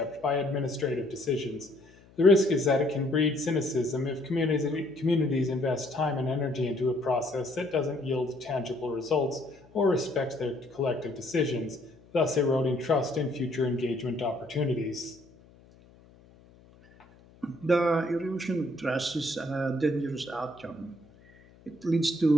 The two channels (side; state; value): left; noise; hum, 26 dB below the sound